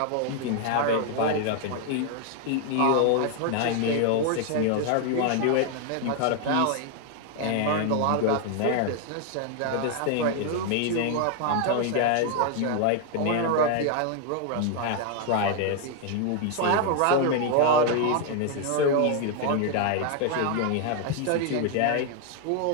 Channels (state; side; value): different; both; correlation 0.00